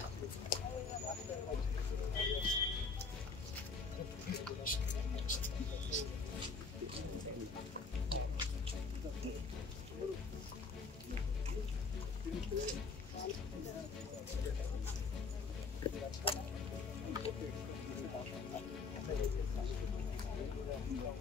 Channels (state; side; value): quieter; right; 4.5 dB